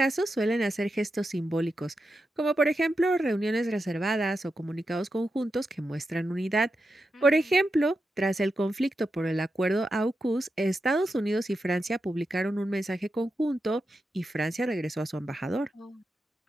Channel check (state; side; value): normal; both; correlation 0.88